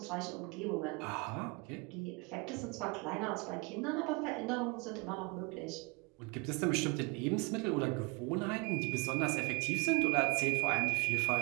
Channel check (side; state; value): left; quieter; 27.8 dB